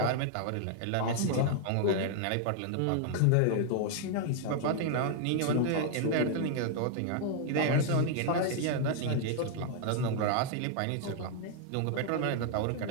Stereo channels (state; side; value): different; both; correlation 0.00